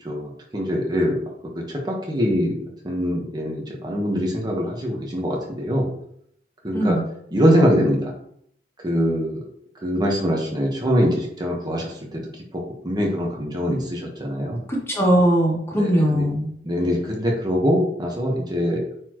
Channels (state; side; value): normal; both; correlation 0.78